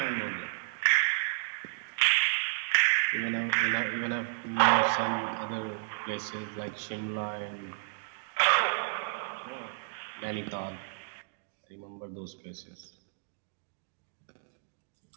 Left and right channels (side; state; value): left; silent; digital silence